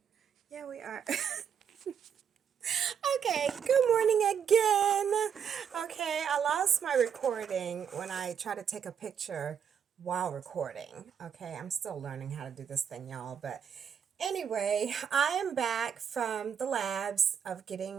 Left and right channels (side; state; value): left; quieter; 7.8 dB